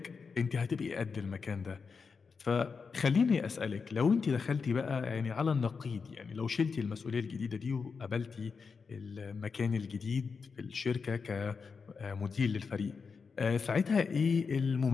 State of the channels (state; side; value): quieter; right; 5.3 dB